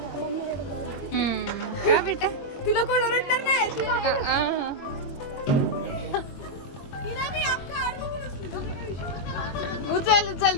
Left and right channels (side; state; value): right; late; 22 ms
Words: काय बेटा? तिला कोण रेटणार नाही. तिला मी अख्खा आड बघून असली. तुझं काय विषय? उचल उचल